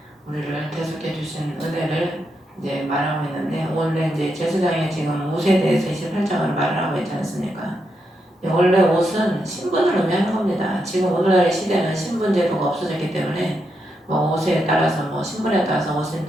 우리를 대속해 주신 은혜를 이제 말하고 있는데, 원래 이제 제사장이 지금 옷에 대해서 28장을 말을 하고 있지 않습니까? 원래 옷은 신분을 의미하는 겁니다. 지금 오늘날의 시대는 신분 제도가 없어졌기 때문에 뭐 옷에 따라서 뭐 신분에 따라서 옷을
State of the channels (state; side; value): normal; both; correlation 0.83